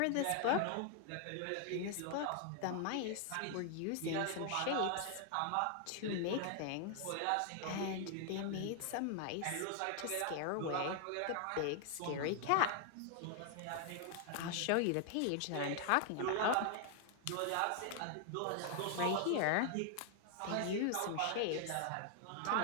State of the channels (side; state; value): both; different; correlation 0.00